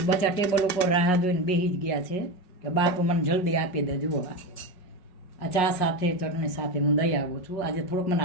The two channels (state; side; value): late; right; 5.5 ms